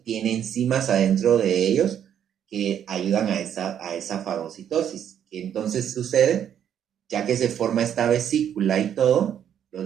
Tiene enzimas adentro de ellos que ayudan a esa fagocitosis. ¿Qué entonces sucede? Ya que se forma esta vesícula y todo, los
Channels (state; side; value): quieter; left; 9.4 dB